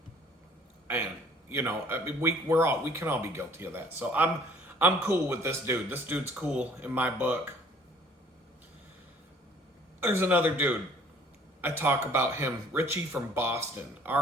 you know, I mean, we can all be guilty of that. So I'm cool with this dude. This dude's cool in my book. There's another dude. I talk about him, Richie from Boston,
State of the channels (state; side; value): normal; both; correlation 0.56